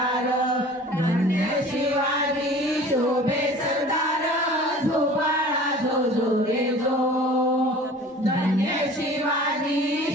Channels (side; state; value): both; normal; correlation 0.44